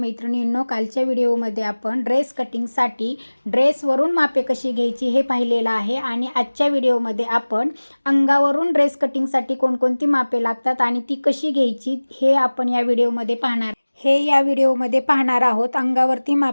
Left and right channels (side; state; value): both; inverted; correlation -1.00